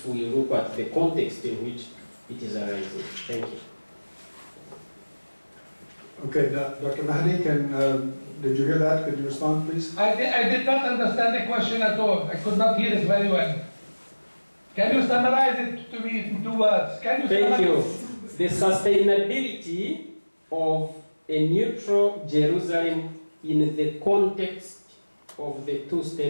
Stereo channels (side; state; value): both; inverted; correlation -1.00